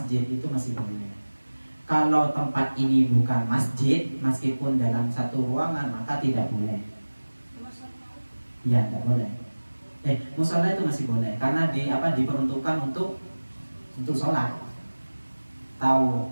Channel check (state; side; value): inverted; both; correlation -1.00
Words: itu masih boleh. Kalau tempat ini bukan masjid, meskipun dalam satu ruangan maka tidak boleh. Ya, tidak boleh. Musola itu masih boleh karena diperuntukkan untuk sholat.